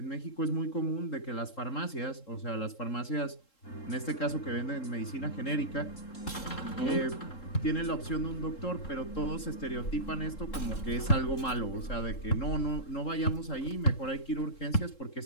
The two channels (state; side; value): late; right; 3.7 ms